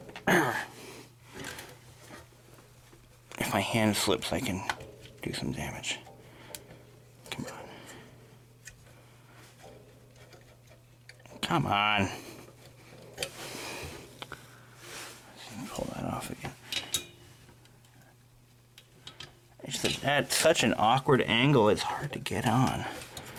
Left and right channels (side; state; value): both; identical; correlation 1.00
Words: If my hand slips, I can do some damage. Come on. Come on. Let's pull that off again. It's at such an awkward angle, it's hard to get on.